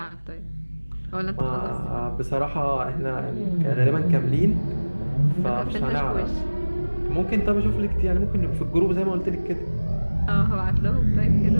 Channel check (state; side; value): inverted; both; correlation -1.00